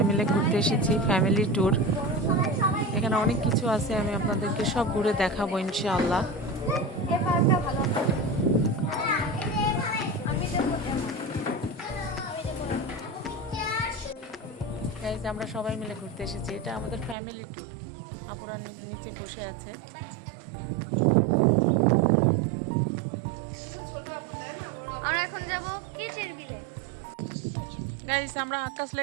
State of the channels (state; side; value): drops out; left; at 17.2 s